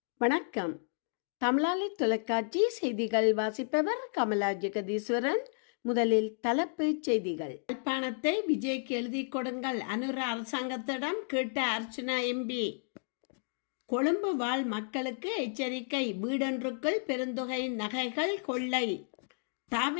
வணக்கம். தமிழாளி தொலைக்காட்சி செய்திகள் வாசிப்பவர் கமலா ஜெகதீஸ்வரன். முதலில் தலைப்புச் செய்திகள். யாழ்ப்பாணத்தை விஜய்க்கு எழுதி கொடுங்கள், அனுர அரசாங்கத்திடம் கேட்ட அர்ச்சனா எம்பி. கொழும்பு வாழ் மக்களுக்கு எச்சரிக்கை, வீடொன்றுக்குள் பெருந்தொகை நகைகள் கொள்ளை.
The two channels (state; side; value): silent; right; digital silence